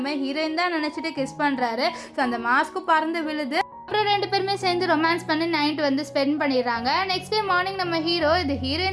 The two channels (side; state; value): both; identical; correlation 1.00